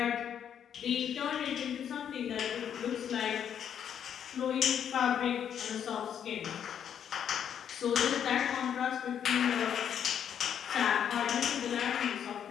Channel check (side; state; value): right; quieter; 8.8 dB